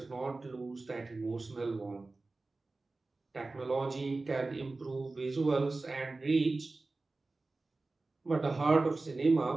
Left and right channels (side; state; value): left; quieter; 3.4 dB